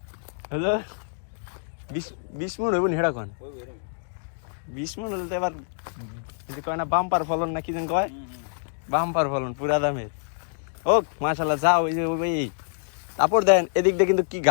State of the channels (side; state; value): right; silent; digital silence